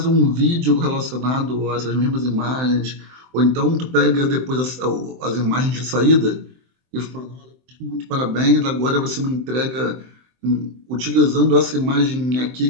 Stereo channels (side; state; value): left; late; 23 ms